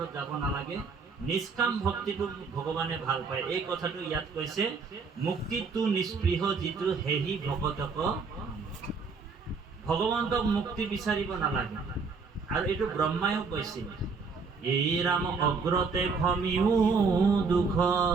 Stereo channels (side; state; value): left; quieter; 4.8 dB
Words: যাব নালাগে, নিষ্কাম ভক্তিটো ভগৱানে ভাল পায়। এই কথাটো ইয়াত কৈছে, মুক্তিটো নিস্পৃহ যিটো হেহি ভগতক, ভগৱন্তক মুক্তি বিচাৰিব নালাগে। আৰু এইটো ব্ৰহ্মায়ো কৈছিল, এই ৰাম অগ্ৰতে ভমিও দুখ,